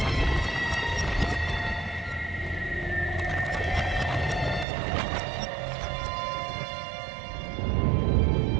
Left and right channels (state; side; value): drops out; left; at 4.7 s